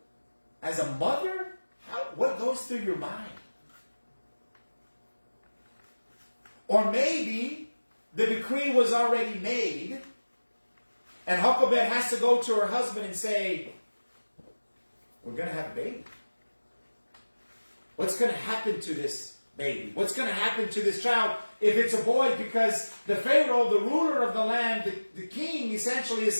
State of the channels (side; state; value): both; inverted; correlation -1.00